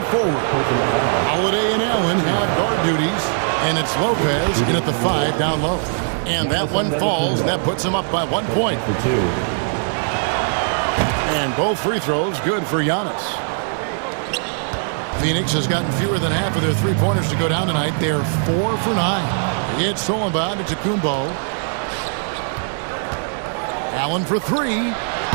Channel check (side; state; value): left; silent; 58 dB below the other